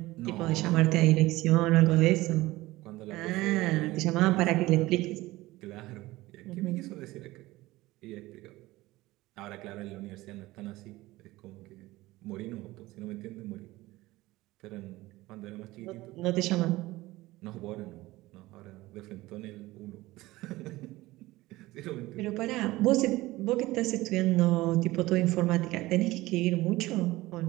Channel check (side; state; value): left; quieter; 18.7 dB